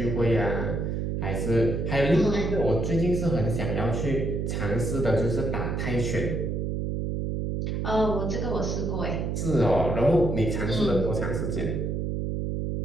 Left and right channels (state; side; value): noise; right; hum, 1 dB below the sound